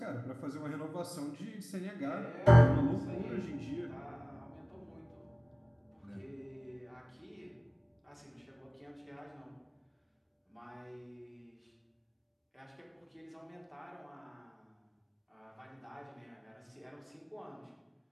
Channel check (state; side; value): identical; both; correlation 1.00